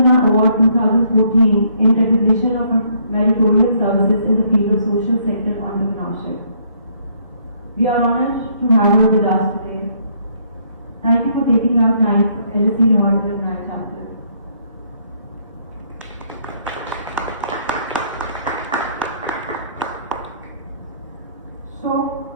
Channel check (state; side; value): inverted; both; correlation -0.66